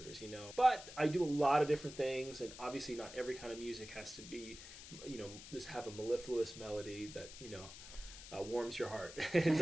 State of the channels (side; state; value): left; noise; hiss, 14 dB below the sound